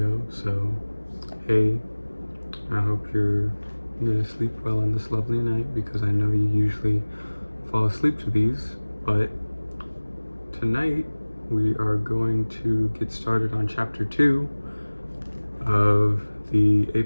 so hey, I hope you're gonna sleep well on this lovely night because I know you usually fall asleep to these, but tonight we are going to get started on chapter 2 of the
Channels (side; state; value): both; inverted; correlation -1.00